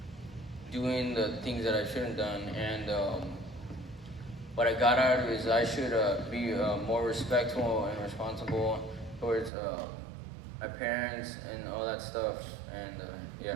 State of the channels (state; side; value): drops out; left; at 9.5 s